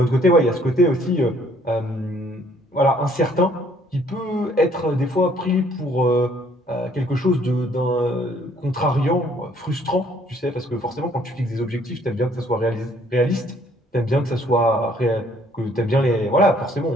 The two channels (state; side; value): normal; both; correlation 0.62